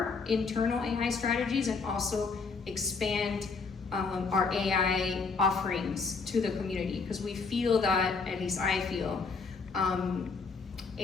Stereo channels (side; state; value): right; quieter; 4.7 dB